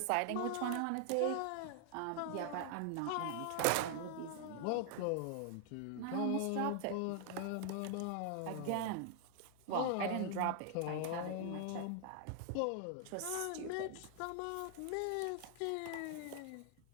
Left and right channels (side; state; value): both; different; correlation 0.00